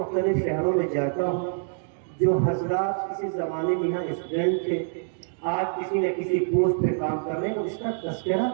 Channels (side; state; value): left; silent; digital silence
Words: شہروں میں جاتا ہوں، جو حضرات کسی زمانے میں یہاں اسٹوڈنٹ تھے، آج کسی نہ کسی پوسٹ پہ کام کر رہے ہیں، اس کا تذکرہ